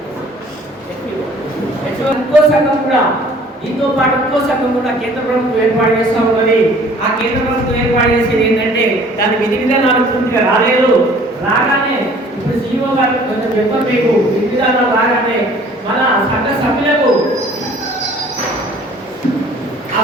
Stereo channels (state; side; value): normal; both; correlation 0.53